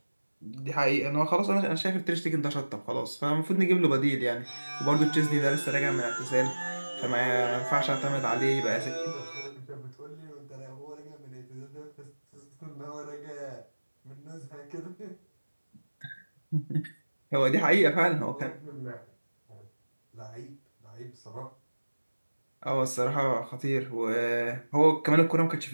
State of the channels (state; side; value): inverted; both; correlation -1.00